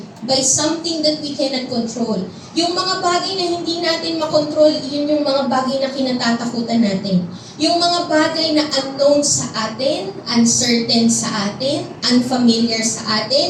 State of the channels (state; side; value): identical; both; correlation 1.00